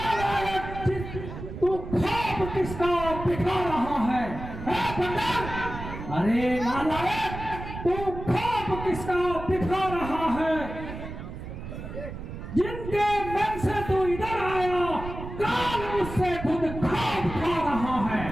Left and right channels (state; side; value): noise; right; rumble, 9 dB below the sound